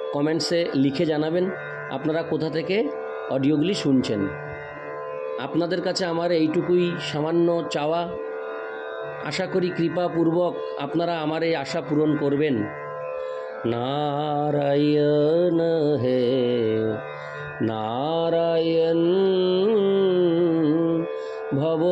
কমেন্টসে লিখে জানাবেন আপনারা কোথা থেকে অডিওগুলি শুনছেন। আপনাদের কাছে আমার এইটুকুই সামান্য চাওয়া। আশা করি কৃপাপূর্বক আপনারা আমার এই আশা পূরণ করবেন। नारायण है नारायण भव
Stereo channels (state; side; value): identical; both; correlation 1.00